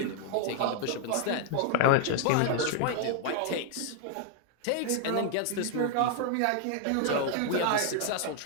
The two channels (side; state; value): both; different; correlation 0.00